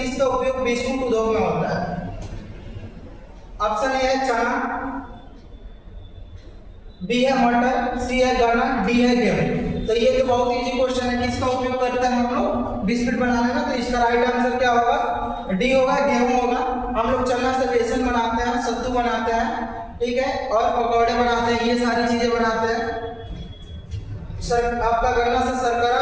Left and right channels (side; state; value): both; identical; correlation 1.00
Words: उपयोग बिस्कुट उद्योग में होता है। ऑप्शन ए है चना, बी है मटर, सी है गन्ना, डी है गेहूं। तो ये तो बहुत इजी क्वेश्चन है, किसका उपयोग करते हैं हम लोग बिस्किट बनाने में। तो इसका राइट आंसर क्या होगा, डी होगा, गेहूं होगा। हम लोग चना से बेसन बनाते हैं, सत्तू बनाते हैं, ठीक है, और पकौड़े बनाते हैं, ये सारी चीजें बनाते हैं। आपका गन्ना से शर्करा,